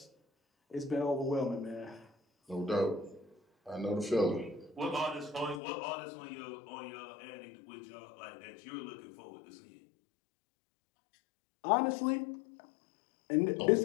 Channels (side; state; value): right; drops out; at 5.6 s